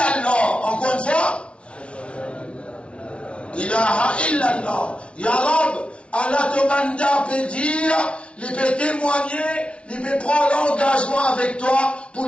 Encore une fois. Ilaha illallah. Ya Rab, Allah te manda peut dire, il peut témoigner, il peut prendre l'engagement avec toi pour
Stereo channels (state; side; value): late; right; 0.060 ms